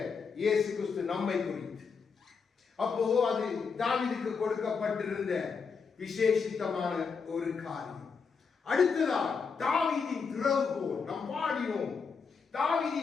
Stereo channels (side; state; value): right; quieter; 5.5 dB